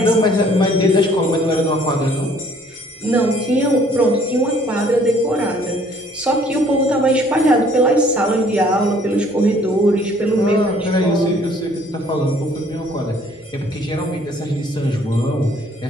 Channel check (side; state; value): both; normal; correlation 0.59